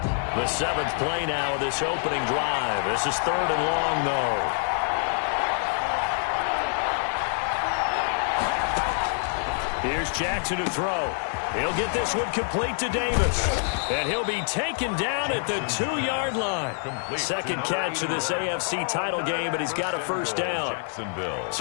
The 7th play now of this opening drive. This is 3rd and long, though. Here's Jackson to throw. He'll get this one complete to Davis. And he'll be taken down at the 2-yard line. Second catch of this AFC title game, but he's got a first down.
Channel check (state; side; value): silent; right; 56 dB below the other